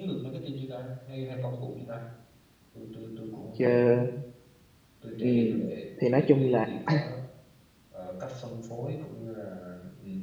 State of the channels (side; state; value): both; identical; correlation 1.00